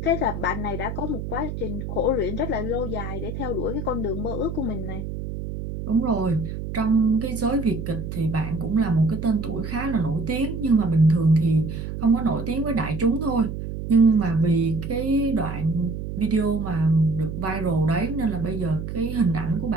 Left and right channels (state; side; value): noise; right; hum, 6 dB below the sound